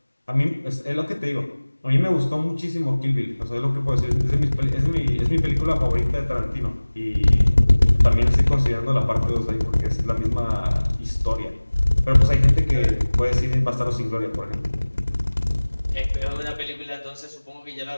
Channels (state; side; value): inverted; both; correlation -1.00